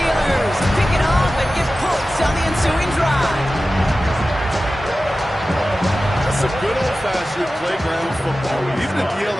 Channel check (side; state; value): both; normal; correlation 0.95